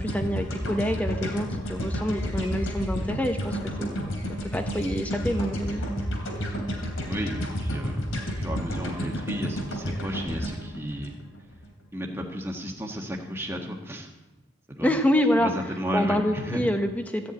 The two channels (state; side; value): normal; both; correlation 0.79